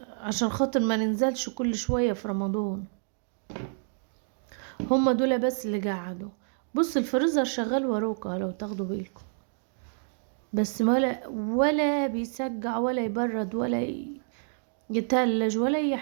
عشان خاطر ما ننزلش كل شوية في رمضان. هما دول بس اللي قعدوا. بص الفريزر شغال وروكا لو تاخدوا بالكم، بس ولا بيسقع ولا يبرد ولا يتلج ولا اي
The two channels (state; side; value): silent; left; digital silence